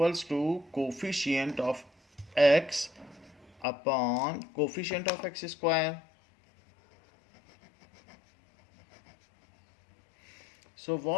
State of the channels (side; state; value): right; drops out; at 3.7 s